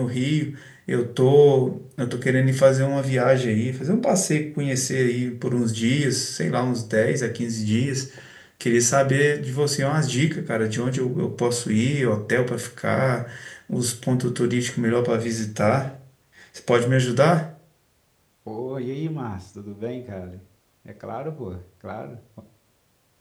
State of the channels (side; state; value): both; identical; correlation 1.00